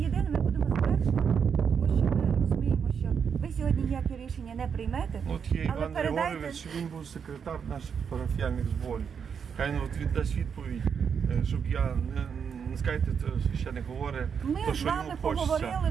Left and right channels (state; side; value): quieter; left; 6.9 dB